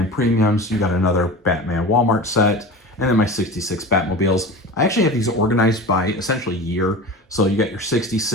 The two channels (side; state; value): both; normal; correlation 0.33